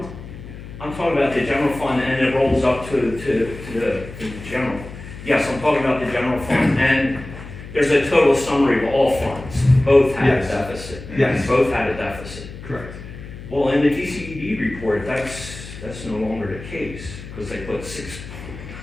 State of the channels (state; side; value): noise; left; hum, 13 dB below the sound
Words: I'm talking about the general fund and it rolls up to the general. Yes, I'm talking about the general fund and there's a total summary of all funds. Both had a Yes. deficit. Yes. Both had a deficit. Correct. Well, in the DCED report, that's no longer the case because they put